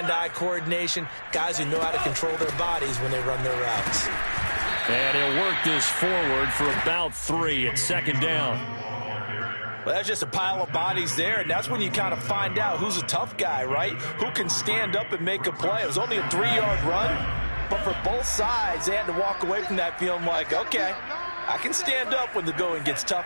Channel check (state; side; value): inverted; both; correlation -1.00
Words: coordination, guys who know how to control their bodies when they run their routes. And he'll work this forward for about 3 at 2nd down. Well, that's just a pile of bodies there, and that's when you kind of find out who's a tough guy, right? Who can stand up and make a play. It was only a 3-yard run, but for both sides, they had to walk away from that feeling like, okay, I can stand up when the going gets